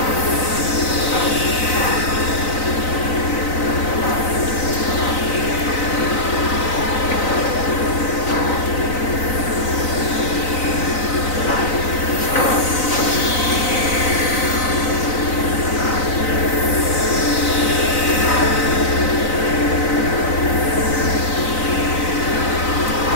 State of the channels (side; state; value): right; late; 3.9 ms